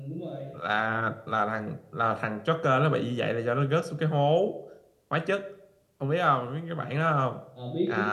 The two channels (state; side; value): identical; both; correlation 1.00